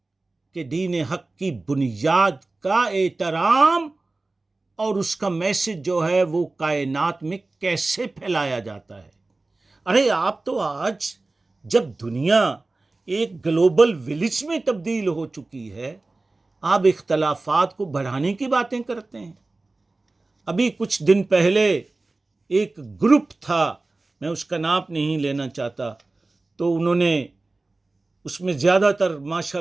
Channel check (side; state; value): left; quieter; 3.3 dB